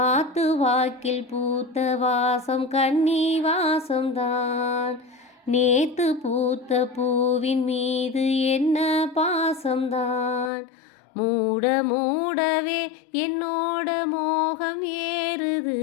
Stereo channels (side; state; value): right; drops out; at 10.5 s